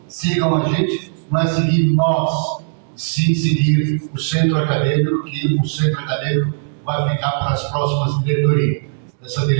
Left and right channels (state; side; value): silent; left; digital silence